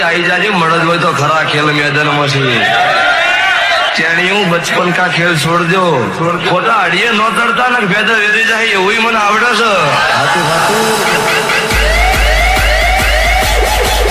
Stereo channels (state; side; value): identical; both; correlation 1.00